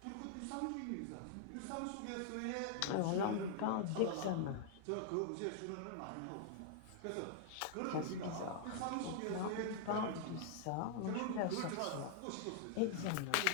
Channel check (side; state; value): both; different; correlation -0.01